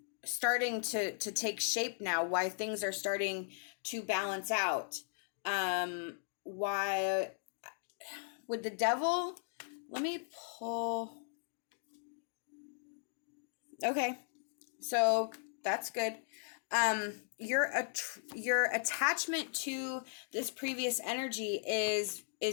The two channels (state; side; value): silent; right; digital silence